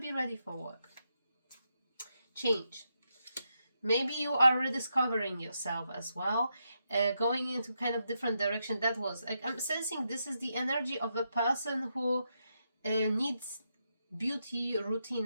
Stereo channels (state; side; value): inverted; both; correlation -0.83